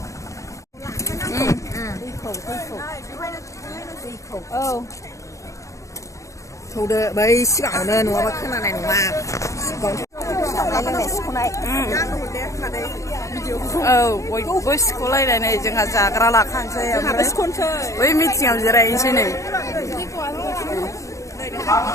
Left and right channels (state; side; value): late; right; 0.15 ms